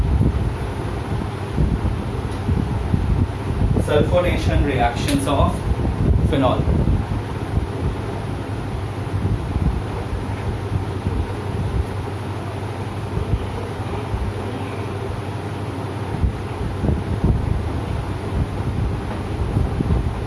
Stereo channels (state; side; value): identical; both; correlation 1.00